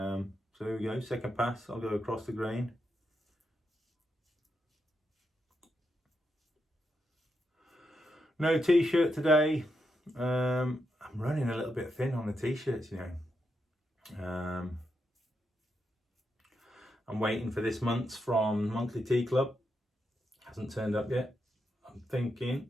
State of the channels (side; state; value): both; normal; correlation 0.84